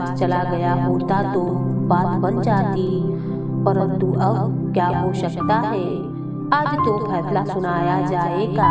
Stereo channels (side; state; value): both; identical; correlation 1.00